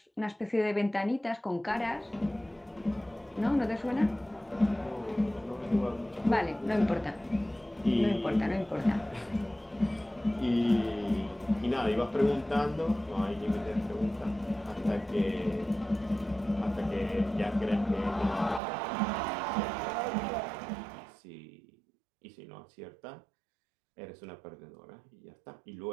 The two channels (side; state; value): left; drops out; at 18.6 s